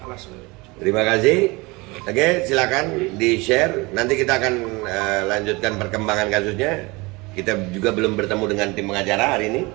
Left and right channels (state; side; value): quieter; left; 24.7 dB